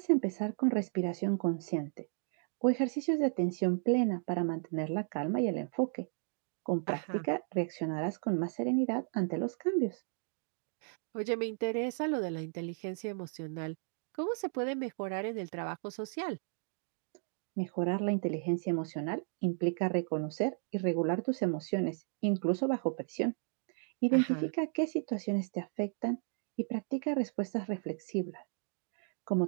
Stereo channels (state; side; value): silent; left; 55 dB below the other